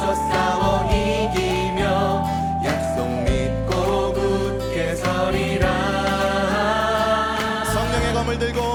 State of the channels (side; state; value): both; identical; correlation 1.00